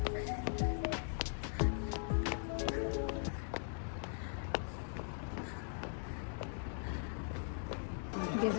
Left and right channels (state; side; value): silent; right; digital silence